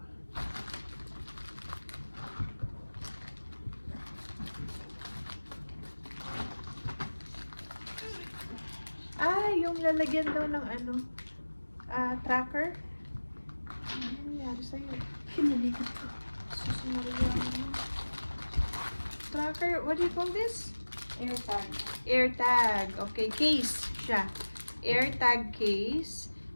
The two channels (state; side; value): inverted; both; correlation -1.00